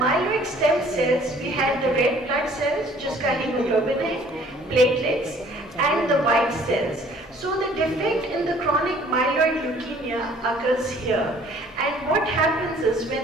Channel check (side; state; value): both; normal; correlation 0.55